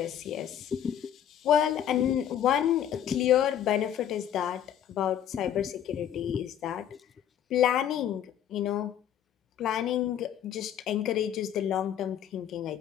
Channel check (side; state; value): right; quieter; 10.1 dB